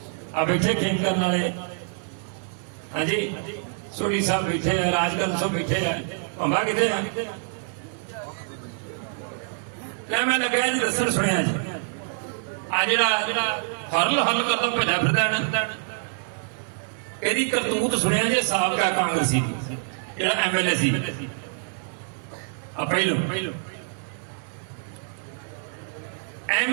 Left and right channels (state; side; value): silent; left; digital silence